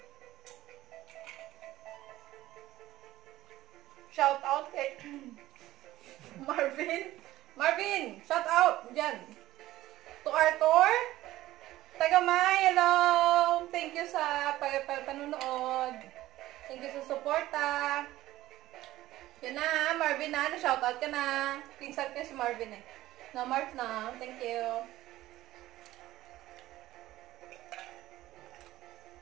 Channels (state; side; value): quieter; left; 15.6 dB